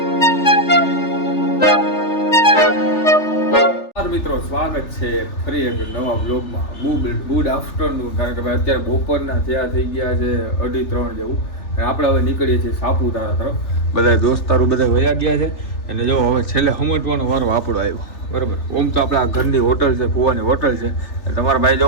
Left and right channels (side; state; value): right; late; 3.4 ms